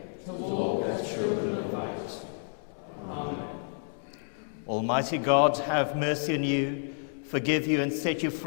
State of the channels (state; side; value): silent; right; digital silence